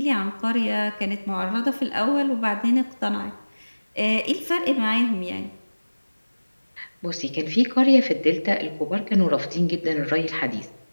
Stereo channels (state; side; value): inverted; both; correlation -1.00